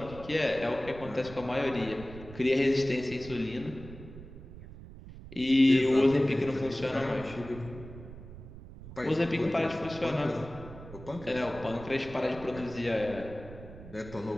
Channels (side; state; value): right; noise; rumble, 15 dB below the sound